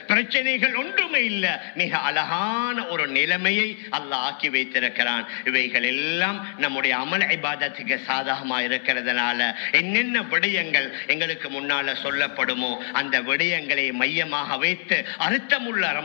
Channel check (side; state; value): right; silent; 61 dB below the other